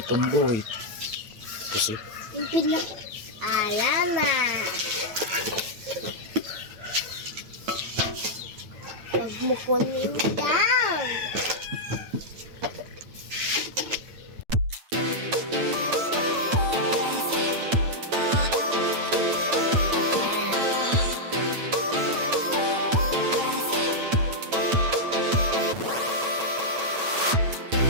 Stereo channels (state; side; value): late; left; 9.0 ms